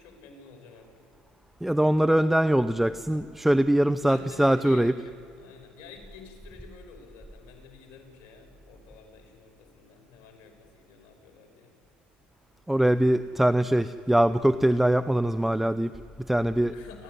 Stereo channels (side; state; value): both; normal; correlation 0.98